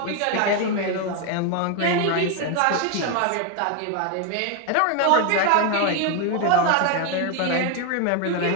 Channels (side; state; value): both; different; correlation 0.01